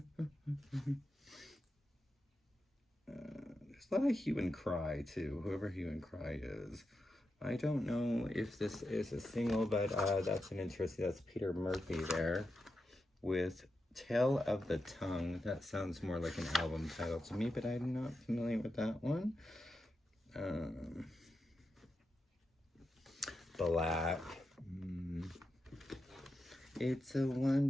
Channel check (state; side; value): normal; both; correlation 0.88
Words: there's a lot of hue and cry too, whoever hue and cry is. I don't know if this is a single, but that's an interesting, that's Peter Murphy there with Tale of the Tongue. That sounds more like an album title to me, but I'm not familiar with that one. Black. It's a